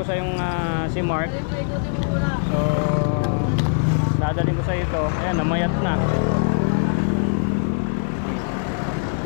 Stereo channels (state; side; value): silent; right; digital silence